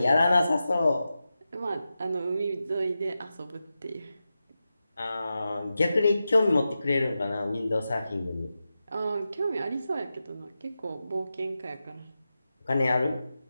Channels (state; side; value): inverted; both; correlation -0.92